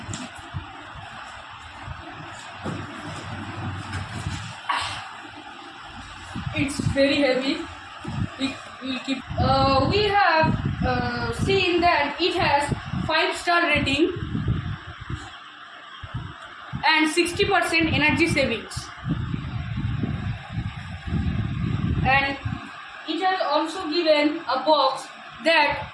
It's very heavy. We'll keep. We have seen that it has 5-star rating and 60% energy savings, and it has also given a box that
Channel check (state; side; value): identical; both; correlation 1.00